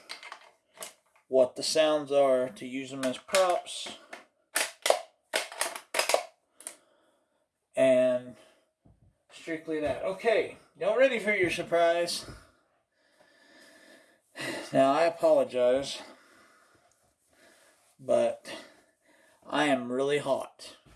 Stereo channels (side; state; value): both; identical; correlation 1.00